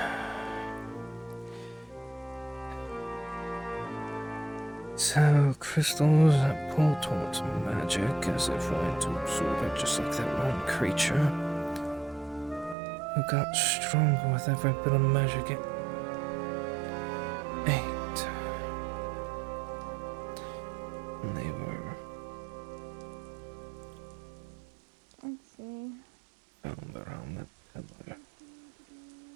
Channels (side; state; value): left; drops out; at 12.8 s